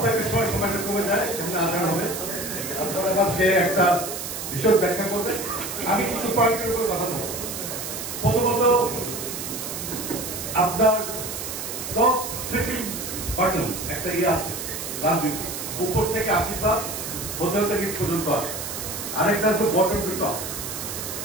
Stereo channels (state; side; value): noise; right; hiss, 6 dB below the sound